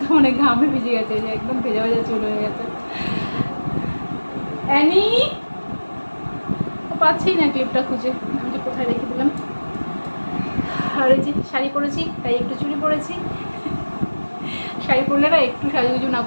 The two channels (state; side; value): inverted; both; correlation -1.00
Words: মানে ঘামে ভিজে গেছে, যে একদম ভেজা ভেজা চুল হয়ে গেছে। অ্যানি পাচ্ছি না ক্লিপটা খুঁজে, আমি যে কোথায় রেখে দিলাম। আর এই যে শাড়ি পরেছি, তাই একটু চুড়ি পরেছি। শাড়ি পরলে না একটু সাজুগুজু না